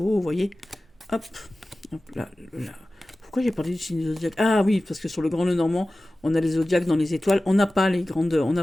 vous voyez. Hop. Hop là. Pourquoi j'ai parlé du signe du zodiaque? Ah oui, parce que sur le grand le normand, on a les zodiaques dans les étoiles. On n'a pas on n'a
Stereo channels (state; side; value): normal; both; correlation 0.96